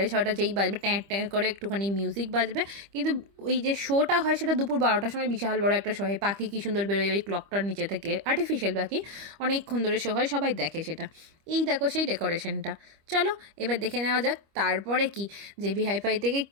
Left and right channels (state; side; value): late; left; 25 ms